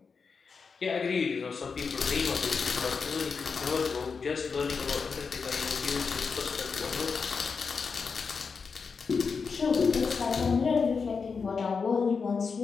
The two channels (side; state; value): right; quieter; 5.3 dB